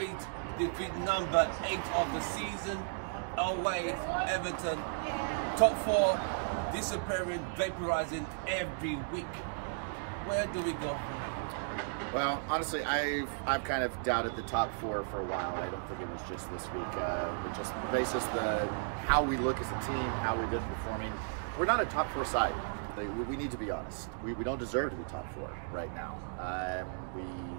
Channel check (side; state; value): left; silent; digital silence